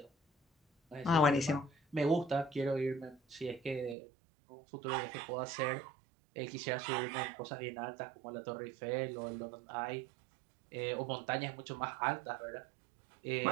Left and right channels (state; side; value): drops out; left; at 4.0 s